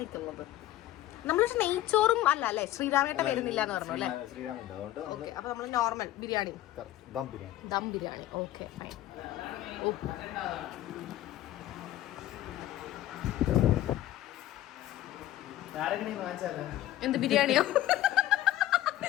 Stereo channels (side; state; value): right; quieter; 14.2 dB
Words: നമ്മൾ നെയ്ച്ചോറും അല്ല അല്ലേ? ശ്രീരാമേട്ട വരുന്നില്ല എന്ന് പറഞ്ഞു അല്ലേ? ഓക്കെ. അപ്പൊ നമ്മൾ normal biryani, dum biryani. Okay fine. എന്ത് ബിരിയാണിയോ?